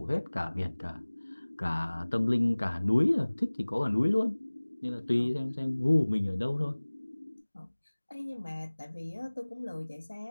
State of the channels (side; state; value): both; inverted; correlation -1.00